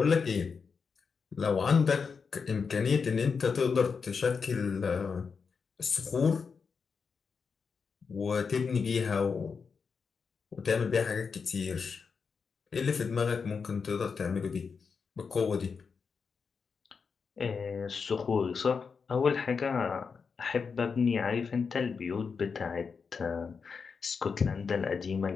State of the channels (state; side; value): quieter; right; 5.5 dB